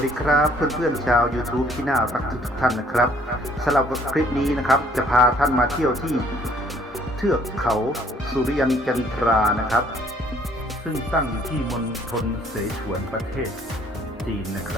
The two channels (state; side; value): normal; both; correlation 0.61